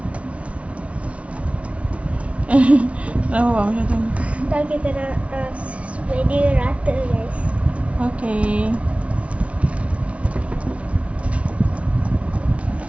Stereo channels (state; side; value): late; left; 0.063 ms